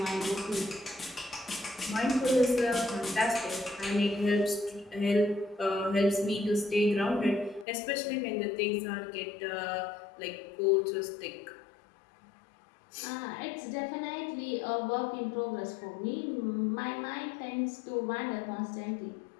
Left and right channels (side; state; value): right; drops out; at 7.7 s